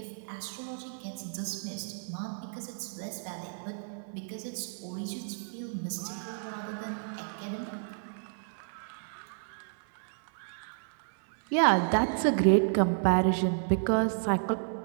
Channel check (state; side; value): silent; left; 57 dB below the other